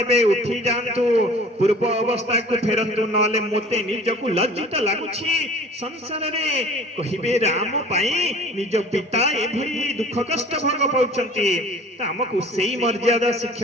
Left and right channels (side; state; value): both; normal; correlation 0.45